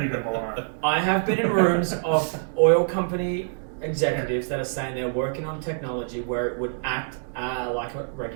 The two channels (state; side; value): silent; left; digital silence